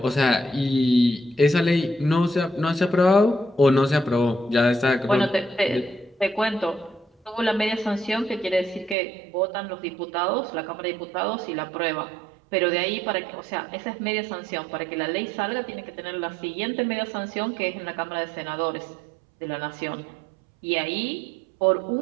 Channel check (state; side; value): drops out; left; at 9.0 s